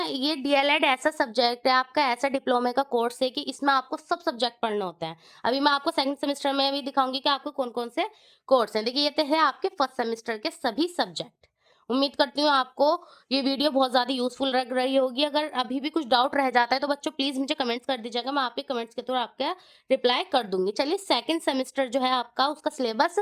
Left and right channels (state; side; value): identical; both; correlation 1.00